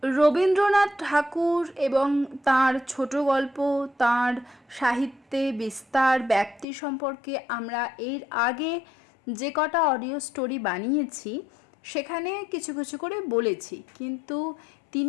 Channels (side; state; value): right; drops out; at 6.7 s